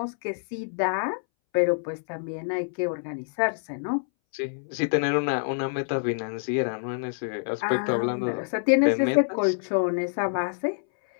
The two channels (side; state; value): right; silent; 60 dB below the other